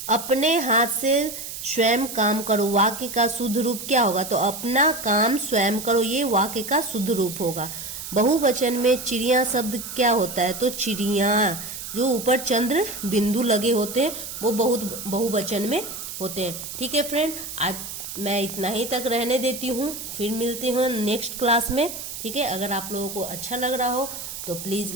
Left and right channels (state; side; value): noise; right; hiss, 9 dB below the sound